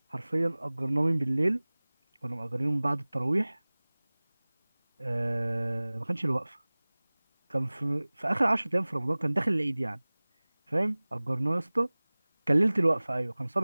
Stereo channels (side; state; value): both; inverted; correlation -1.00